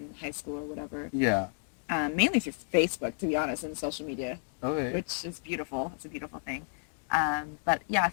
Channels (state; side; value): silent; right; digital silence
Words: high school or whatever. Yeah. Mainly through Facebook, to be honest, and social media, Okay. which is beautiful. It's a beautiful thing. But yeah, a